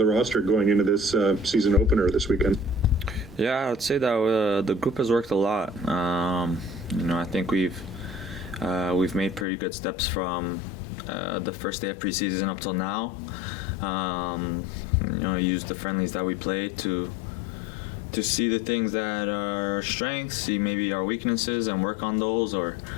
roster going into this season opener this weekend? Yeah, I'd say that the group has worked a lot. I think we've made pretty good steps from the first day of preseason up till now. Use the friendlies that we played to see the things that are our strengths, see maybe our weaknesses, and work on those, or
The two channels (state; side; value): drops out; right; at 9.5 s